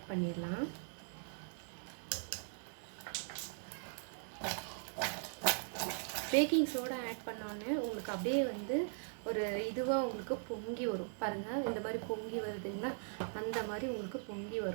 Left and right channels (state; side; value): silent; left; digital silence